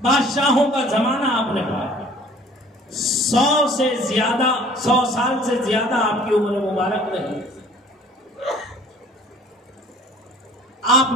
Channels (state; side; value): normal; both; correlation 0.51